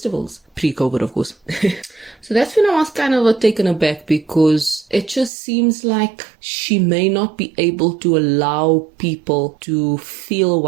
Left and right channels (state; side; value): drops out; left; at 5.3 s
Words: pre-COVID of course. So that's when I was kind of taken aback, because it just seems like she may not be able to allow people to feel